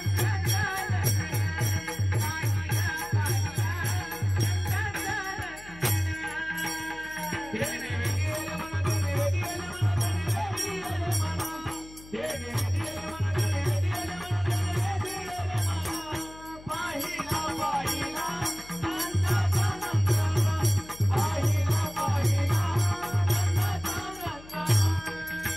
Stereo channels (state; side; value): noise; left; hum, 19 dB below the sound